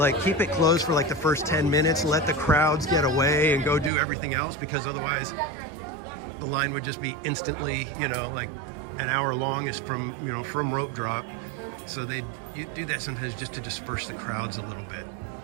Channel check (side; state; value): left; drops out; at 3.9 s